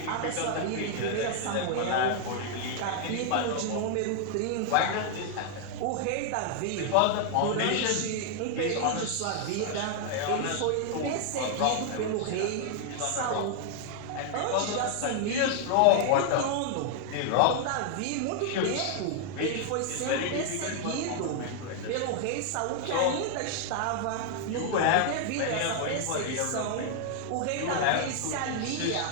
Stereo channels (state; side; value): different; both; correlation 0.00